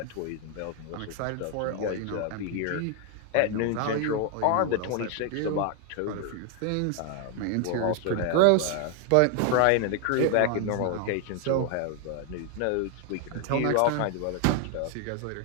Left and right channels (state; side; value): different; both; correlation 0.00